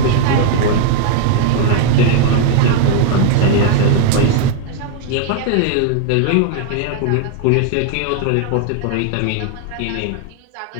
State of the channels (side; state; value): both; different; correlation 0.00